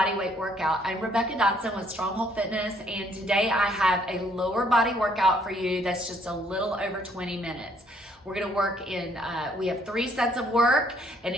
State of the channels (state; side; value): normal; both; correlation 0.66